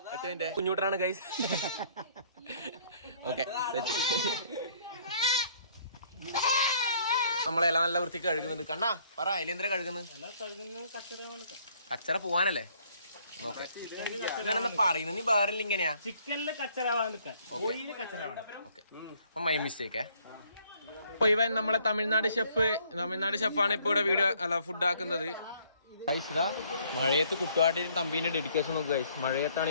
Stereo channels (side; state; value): both; inverted; correlation -0.62